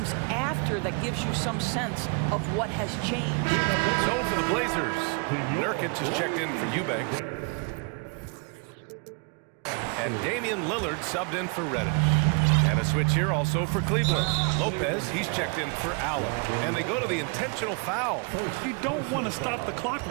after that gives you some sense of what has changed. So for the Blazers, Nurkic is checked in for Eubanks. And Damian Lillard subbed in for Reddish. And a switch here also for Cleveland. Lopez, he's checked in for Allen. And they go to the intentional foul. You don't want to stop the clock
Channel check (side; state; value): left; quieter; 35.7 dB